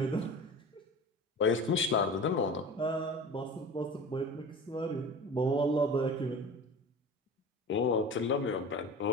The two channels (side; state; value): both; normal; correlation 0.36